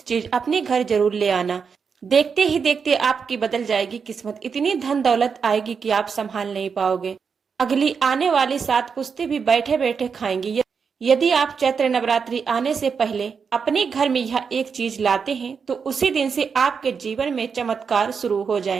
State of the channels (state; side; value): quieter; left; 6.0 dB